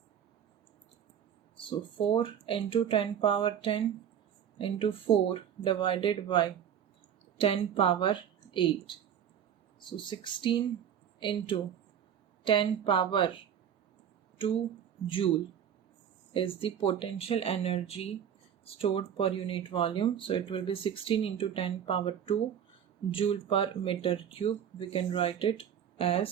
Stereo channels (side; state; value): left; quieter; 9.0 dB